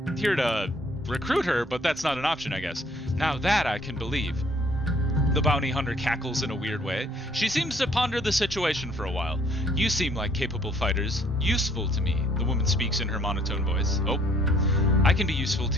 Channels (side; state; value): both; normal; correlation 0.61